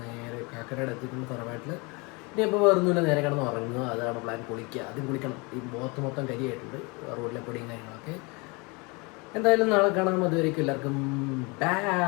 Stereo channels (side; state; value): right; quieter; 28.4 dB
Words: നേരെ കാക്കരയുടെ എത്തിക്കുന്ന തറവാട്ടിൽ. ഇനി ഇപ്പോൾ വേറൊന്നുമില്ല, നേരെ കിടന്ന് ഉറങ്ങുക. അതാണ് പ്ലാൻ. കുളിക്കുക, ആദ്യം കുളിക്കണം. ഈ മുഖത്ത് മൊത്തം കരിയായിട്ടുണ്ട്, റോഡിലെ പൊടിയും കാര്യങ്ങളൊക്കെ. എന്തായാലും നാളെ കാണാം. അതുവരേക്കും എല്ലാവർക്കും